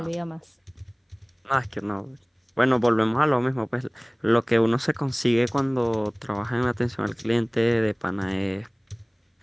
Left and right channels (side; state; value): both; identical; correlation 1.00